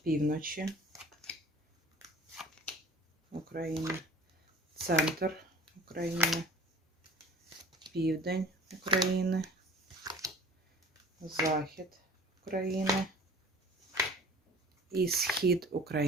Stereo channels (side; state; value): both; normal; correlation 0.45